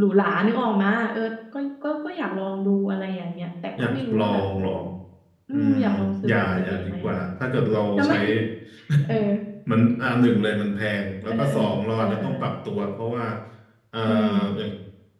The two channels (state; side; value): identical; both; correlation 1.00